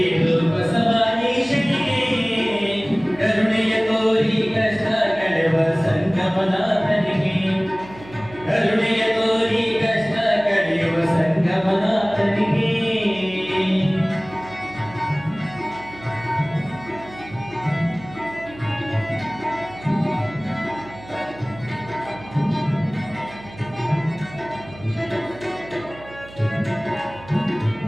ಬಸವಾನೀಶನಿಗೆ ಕರುಣೆಯ ತೋರಿ ಕಷ್ಟ ಕಳೆಯುವ ಸಂಗಮನಾಥನಿಗೆ ಕರುಣೆಯ ತೋರಿ ಕಷ್ಟ ಕಳೆಯುವ ಸಂಗಮನಾಥನಿಗೆ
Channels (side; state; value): right; noise; hum, 18 dB below the sound